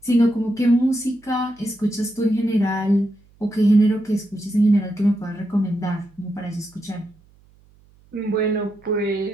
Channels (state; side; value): noise; right; hum, 30 dB below the sound